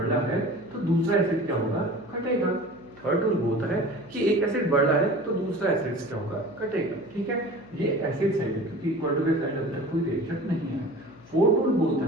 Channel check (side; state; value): left; noise; hum, 24 dB below the sound